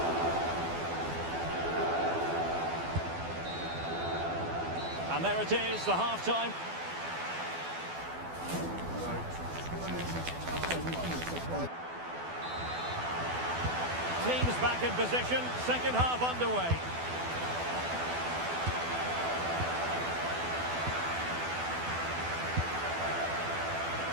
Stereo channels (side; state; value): left; late; 12 ms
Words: And there it is, the half-time. Teams back in position, second half underway.